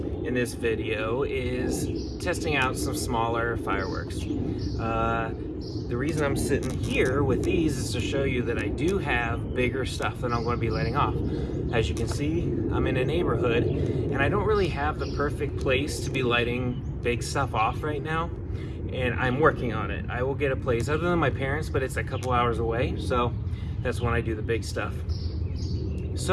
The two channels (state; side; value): identical; both; correlation 1.00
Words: in this video is testing out some smaller fireworks. The reason I'm sitting here with these is to show you that I do have bigger stuff that I'm going to be letting off. As you can see, I'm in a neighborhood and I don't really have the perfect place to be lighting big stuff off right now, and I'm working on it. I will get a place other than my parents, but it's a couple hours away, so that's when I do the big stuff.